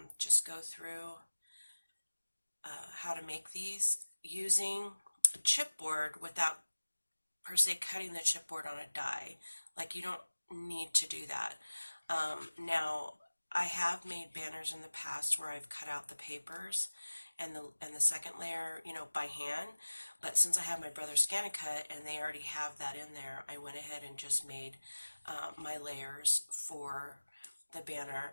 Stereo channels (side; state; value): both; inverted; correlation -1.00